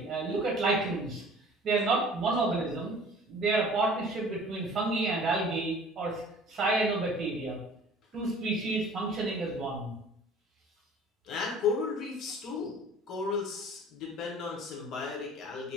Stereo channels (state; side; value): normal; both; correlation 0.48